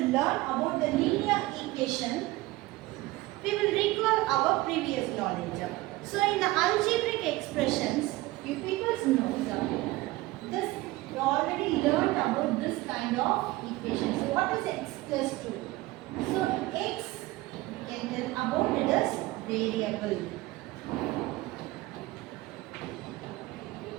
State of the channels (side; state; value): left; quieter; 19.2 dB